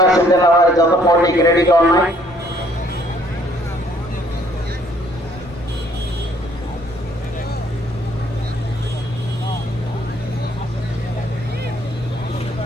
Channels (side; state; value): both; normal; correlation 0.63